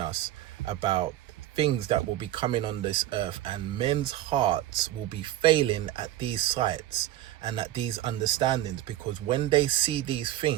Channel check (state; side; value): quieter; left; 13.9 dB